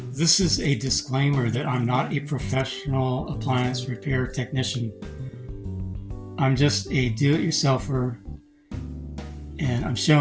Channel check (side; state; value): both; identical; correlation 1.00